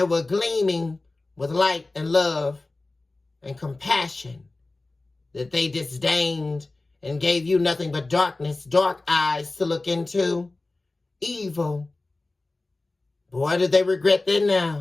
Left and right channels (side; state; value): right; quieter; 3.1 dB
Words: were gleaming with light and love and compassion that they disdained and gave you nothing but darkness, dark eyes to look into. Evil. Boy, do they regret that